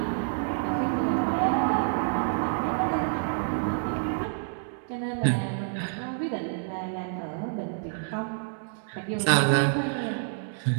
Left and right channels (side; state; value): left; silent; digital silence